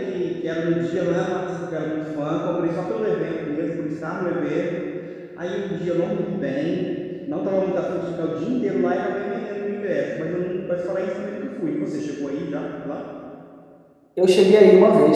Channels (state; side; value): identical; both; correlation 1.00